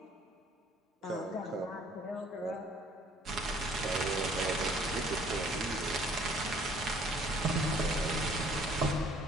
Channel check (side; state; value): both; normal; correlation 0.58